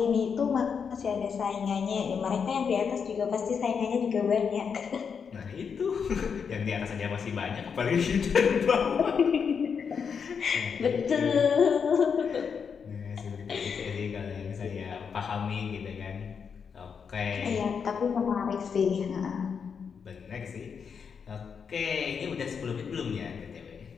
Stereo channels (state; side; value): quieter; right; 6.4 dB